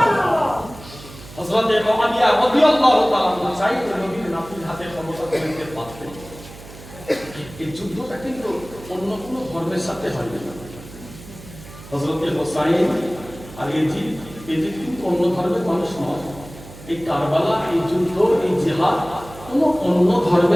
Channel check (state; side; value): noise; right; hum, 17 dB below the sound